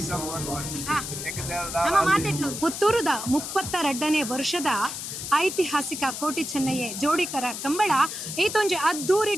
ಸಾಂಗ್ ಪುತ್ತೂರದ 32ನೇ ವರ್ಷದ ಐತಿಹಾಸಿಕ ಕೋಟಿ ಚೆನ್ನಯ್ಯ ಜೋಡಿಕರ ಕಂಬಳ ಈತೊಂಜಿ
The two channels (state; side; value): noise; left; hiss, 6 dB below the sound